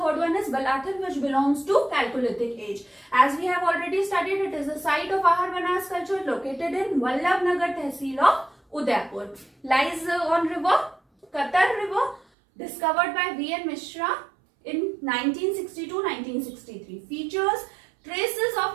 one is Balathal, which belongs to Chalcolithic age. As we have already studied, it is the site of Aharbanas culture located in Vallabhnagar Tehsil of Udaipur. Lies on river Qatar River, discovered by V.N. Mishra in 1962-1963. Features: traces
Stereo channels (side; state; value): left; drops out; at 12.2 s